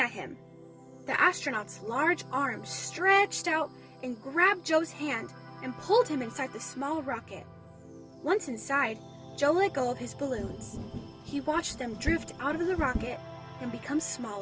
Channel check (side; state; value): both; identical; correlation 1.00